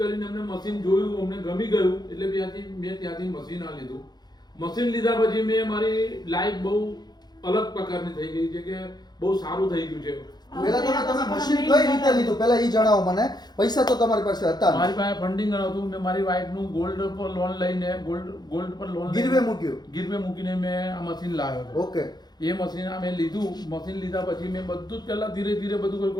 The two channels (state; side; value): late; right; 0.20 ms